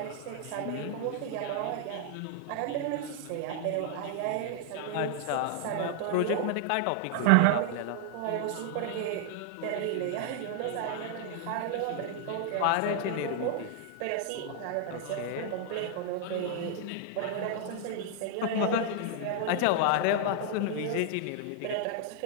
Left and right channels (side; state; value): both; different; correlation 0.00